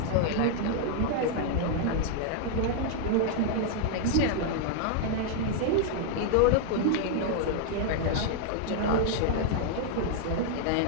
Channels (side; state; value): both; different; correlation 0.00